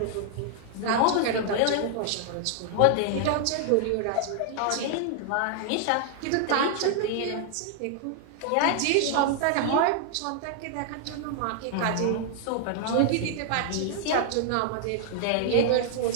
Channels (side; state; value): both; different; correlation 0.00